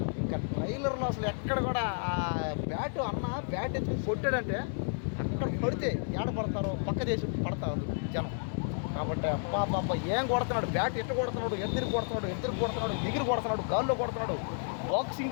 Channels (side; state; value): right; silent; digital silence